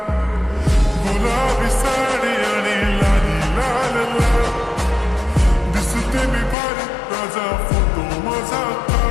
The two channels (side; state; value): right; drops out; at 6.6 s